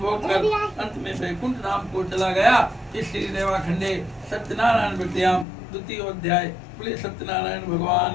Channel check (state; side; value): drops out; right; at 5.5 s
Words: होकर अंत में वैकुंठ धाम को चला गया। इस श्री रेवाखंडे सत्यनारायण व्रतयाम 2य अध्याय। बोले सत्यनारायण